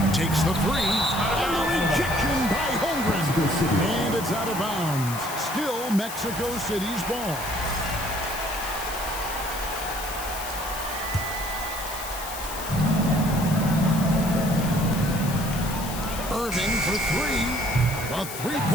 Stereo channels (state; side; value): noise; left; hiss, 10 dB below the sound